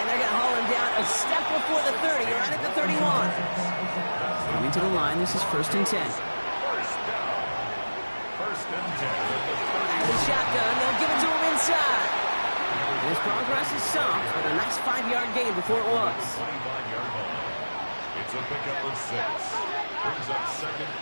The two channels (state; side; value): inverted; both; correlation -1.00